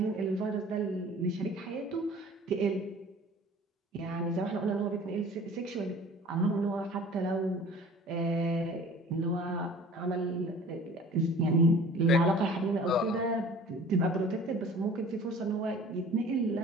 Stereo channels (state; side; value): normal; both; correlation 0.46